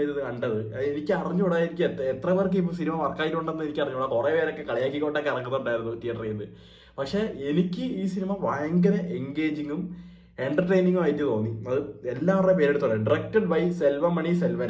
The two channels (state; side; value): identical; both; correlation 1.00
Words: ഇരുന്ന് കണ്ടത്. എനിക്ക് അറിഞ്ഞൂടാ, എനിക്ക് എത്ര പേർക്ക് ഇപ്പൊ സിനിമ വർക്കായിട്ടുണ്ടെന്ന് എനിക്ക് അറിഞ്ഞൂടാ. കുറെ പേരൊക്കെ കളിയാക്കിക്കൊണ്ടൊക്കെ ഇറങ്ങുന്നുണ്ടായിരുന്നു തിയേറ്ററിൽ നിന്ന്. പക്ഷെ എനിക്ക് ഈ സിനിമ ഭയങ്കര എൻഗേജിങ്ങും എന്റർടൈനിങ്ങും ആയിട്ട് തോന്നി. അത് എല്ലാവരുടെയും പേരെടുത്തോളെ. Directed by Selvamani